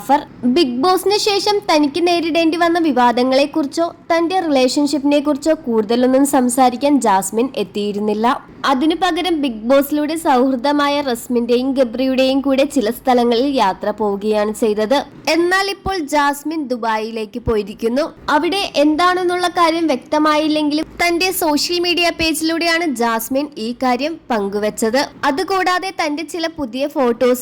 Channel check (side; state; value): both; identical; correlation 1.00